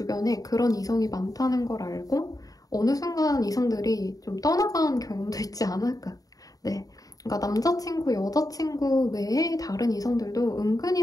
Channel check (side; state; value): right; late; 0.18 ms